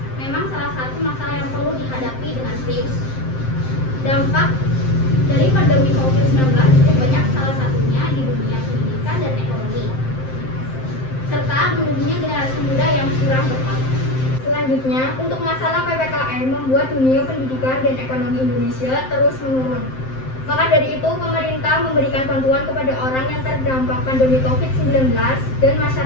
memang salah satu masalah yang perlu dihadapi dengan serius. Dampak dari pandemi COVID-19 cukup banyak, salah satunya di dunia pendidikan dan ekonomi, serta menurunnya generasi muda yang kurang berkualitas. Selanjutnya, untuk masalah PPKM membuat dunia pendidikan dan ekonomi Indonesia terus menurun. Maka dari itu, pemerintah memberikan bantuan kepada orang yang terdampak pandemi COVID-19 dan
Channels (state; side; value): late; right; 7.7 ms